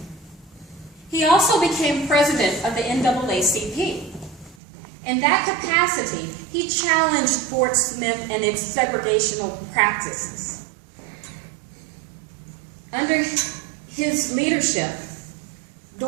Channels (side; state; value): left; drops out; at 4.5 s